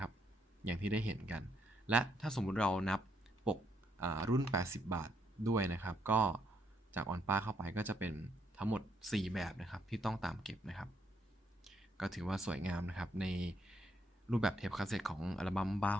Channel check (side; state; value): both; normal; correlation 0.74